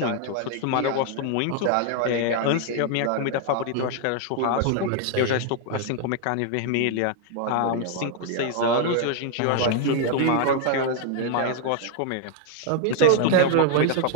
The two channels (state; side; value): different; both; correlation 0.00